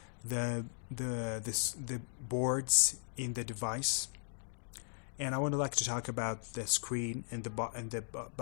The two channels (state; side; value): silent; right; digital silence